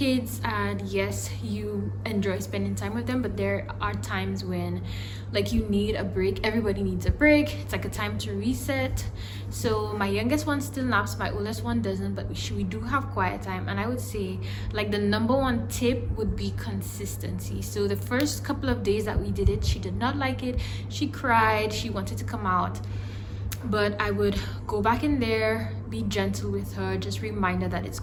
and yes, you enjoy spending time with them, but there are times when like you need a break. Everybody needs a break. It's like a time to reset. So my youngest one still naps, my oldest one doesn't, but we do have quiet time. And I would say like the number 1 tip would be consistency. So the first couple of days that we did it, she did not like it. She cried, she wanted to come out, but I would go back in there, be gentle with her, just remind her that it's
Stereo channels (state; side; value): identical; both; correlation 1.00